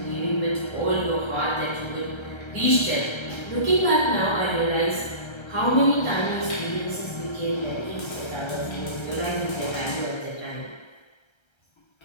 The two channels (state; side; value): late; right; 1.3 ms